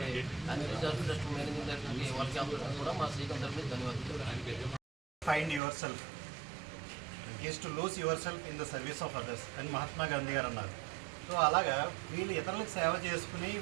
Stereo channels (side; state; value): left; drops out; at 5.6 s